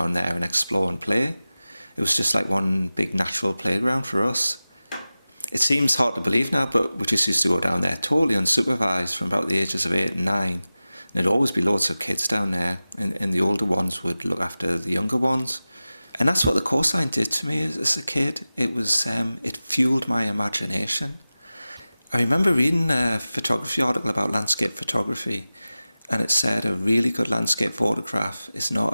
there and explore and play. It was just like one big natural playground for us. It seems hard to believe now, but we just used to go down there totally unsupervised from about the ages of 8 and 9. And there'd always be loads of kids down there, and the older ones would look after the younger ones. And that's what the coastline did to me as a kid. It was, it fueled my imagination. I remember reading a photography article about landscape photography, and it said a really good landscape photograph is not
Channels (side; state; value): both; inverted; correlation -0.96